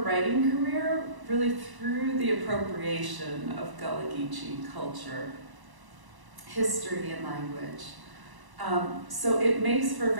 career really through the appropriation of Gullah Geechee culture, history, and language. So it makes for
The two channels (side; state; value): left; late; 1.0 ms